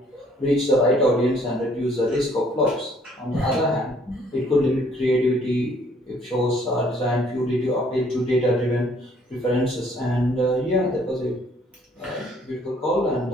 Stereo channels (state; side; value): normal; both; correlation 0.62